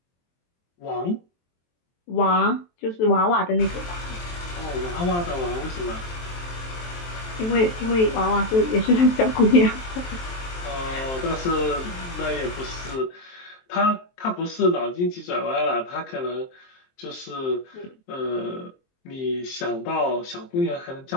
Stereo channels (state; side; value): late; right; 23 ms